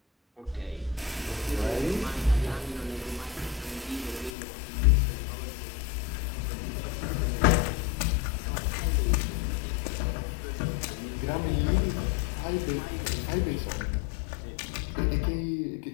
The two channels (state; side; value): drops out; right; at 4.3 s